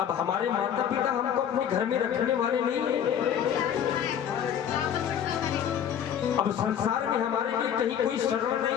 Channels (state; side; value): quieter; right; 9.1 dB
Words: हमारे माता पिता हमको अपने घर में रखने वाले नहीं हैं, अब संसार में हमारे लिए कहीं कोई शरण